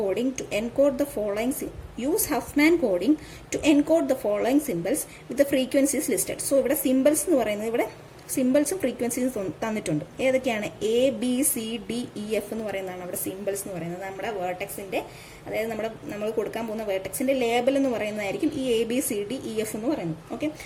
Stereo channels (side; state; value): both; identical; correlation 1.00